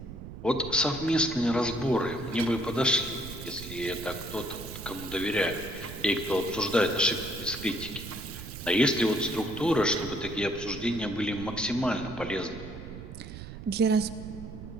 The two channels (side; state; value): right; noise; rumble, 11 dB below the sound